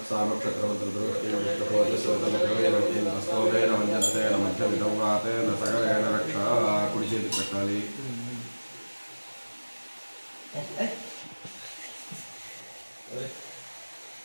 మధ్యమితం వాతేన సగరేణ రక్ష కుడి చేతికి పెట్టాలి.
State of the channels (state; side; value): inverted; both; correlation -1.00